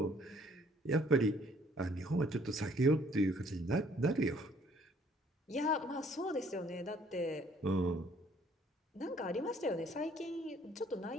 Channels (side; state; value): both; normal; correlation 0.61